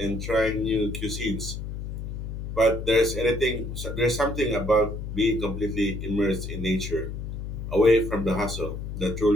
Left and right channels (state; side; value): noise; left; hum, 6 dB below the sound